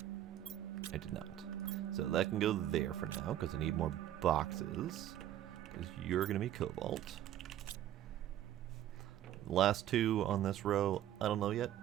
I did not. So that can go there for now, because I need more boxes. Because you're gonna be cobalt. The last two on this row, I don't know yet.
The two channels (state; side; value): quieter; left; 12.1 dB